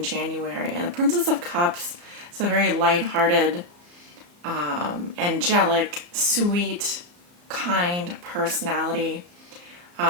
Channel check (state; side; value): late; left; 34 ms